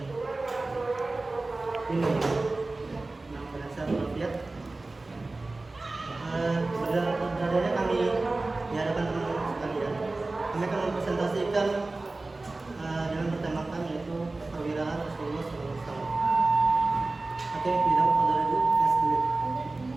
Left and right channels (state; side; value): quieter; left; 3.2 dB